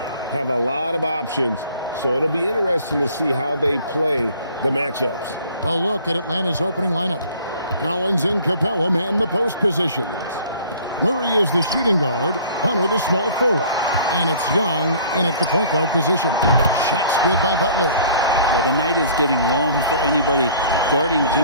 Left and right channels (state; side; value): inverted; both; correlation -0.51